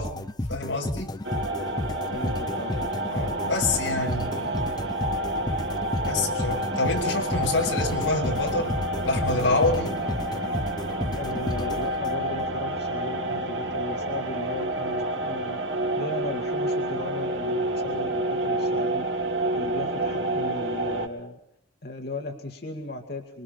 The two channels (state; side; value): normal; both; correlation 0.03